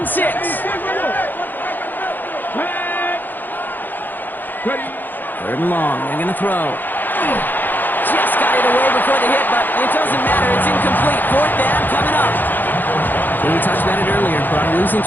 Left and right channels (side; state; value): right; late; 0.089 ms